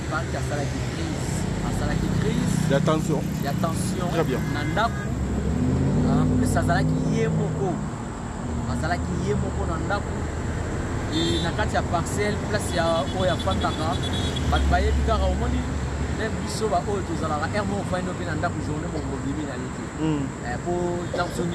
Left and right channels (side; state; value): both; identical; correlation 1.00